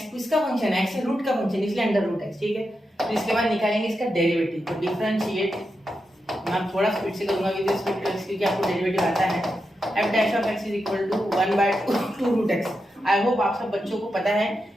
किसका फंक्शन है, x है रूट का फंक्शन, इसलिए अंडर रूट x, ठीक है। तो इसके बाद निकालेंगे इसका डेरिवेटिव। तो डिफरेंशिएट, मैं थोड़ा स्पीड से करूंगा क्योंकि आपको डेरिवेटिव आता है। f dash of x is equal to 1/2 root x। I hope आप सब बच्चों को पता है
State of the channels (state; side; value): normal; both; correlation 0.87